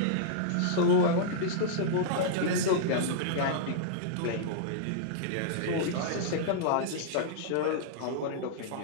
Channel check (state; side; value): different; both; correlation -0.02